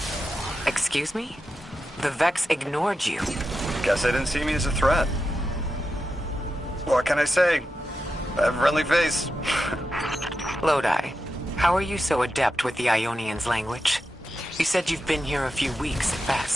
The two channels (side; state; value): both; normal; correlation 0.89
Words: Excuse me? The Vex ignored you. Guess they didn't see me as a threat. What can I say? I have a friendly face. Lodi, how are you so adept with the Ionian's language? You said you've been here a few weeks at